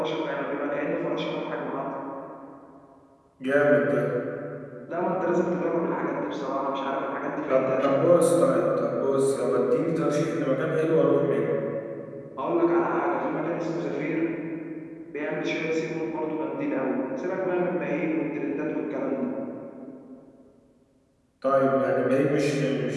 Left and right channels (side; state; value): both; identical; correlation 1.00